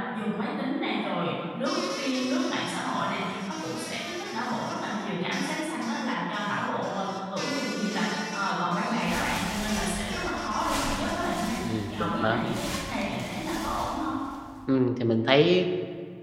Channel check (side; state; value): both; identical; correlation 1.00